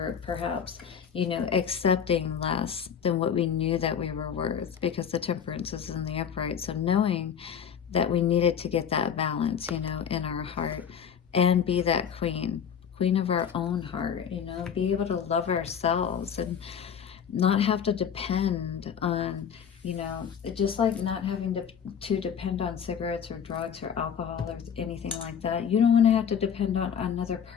perhaps, you know, accepting less than what we knew that we were worth, because the Temperance is in the upright. So knowing that we needed to get that balance, you know, in our heart, and be that queen of our own heart, you know, be able to love ourselves and not have to depend on, you know, just like not having to depend on cigarettes or drugs or alcohol or anything like that. You don't want to have to depend on another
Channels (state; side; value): quieter; right; 7.8 dB